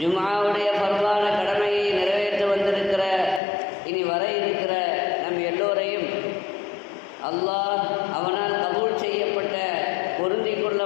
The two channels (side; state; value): right; drops out; at 3.4 s